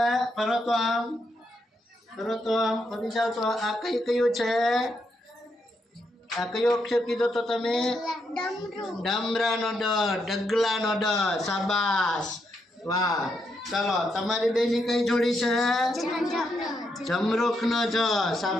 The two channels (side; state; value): both; normal; correlation 0.80